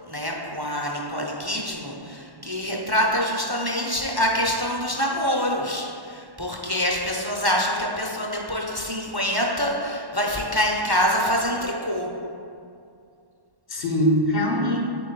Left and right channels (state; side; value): late; left; 1.1 ms